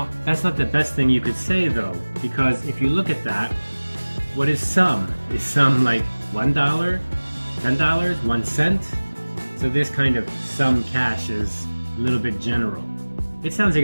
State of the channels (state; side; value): inverted; both; correlation -1.00